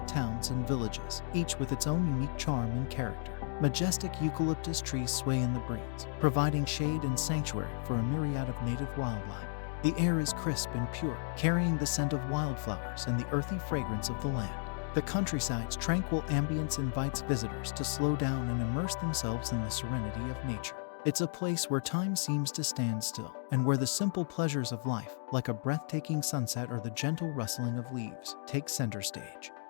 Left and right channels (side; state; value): right; silent; 55 dB below the other